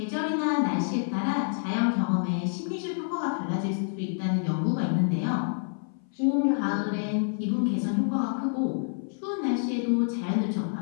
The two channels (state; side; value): silent; right; 57 dB below the other